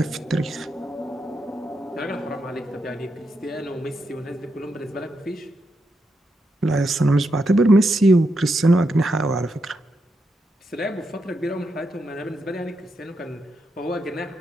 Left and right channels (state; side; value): normal; both; correlation 0.83